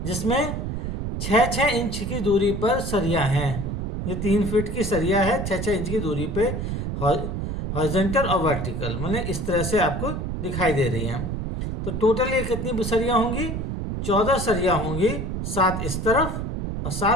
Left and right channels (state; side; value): noise; right; rumble, 3 dB below the sound